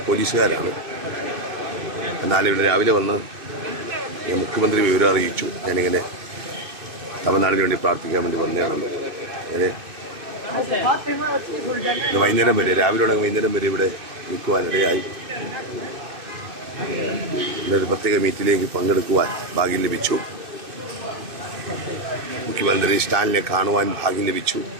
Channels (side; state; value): left; late; 2.6 ms